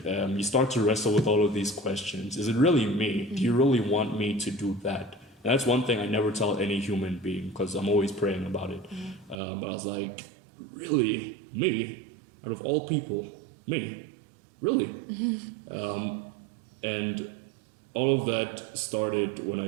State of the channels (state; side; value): drops out; left; at 9.3 s